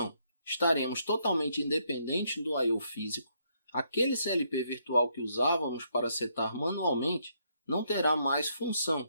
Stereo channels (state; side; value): inverted; both; correlation -0.73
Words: estaremos totalmente independentes do I/O físico, aquele CLP virtual que usávamos para setar manualmente não terá mais função